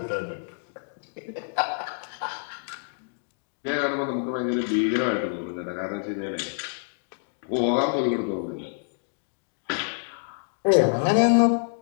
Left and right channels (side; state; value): right; silent; digital silence